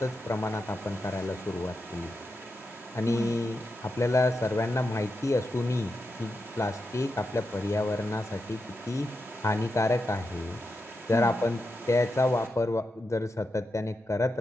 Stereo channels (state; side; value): normal; both; correlation 0.87